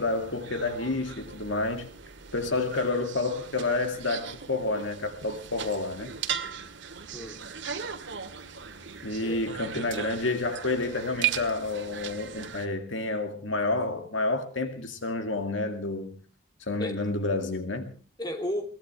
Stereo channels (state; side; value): normal; both; correlation -0.12